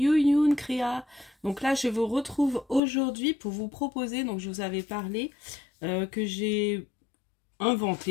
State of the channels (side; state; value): right; drops out; at 2.8 s